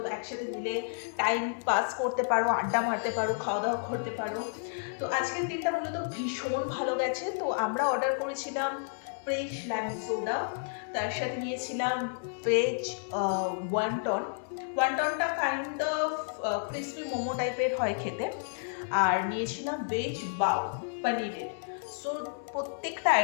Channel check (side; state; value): right; silent; 57 dB below the other